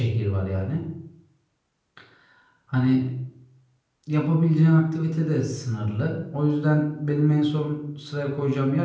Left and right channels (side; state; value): both; identical; correlation 1.00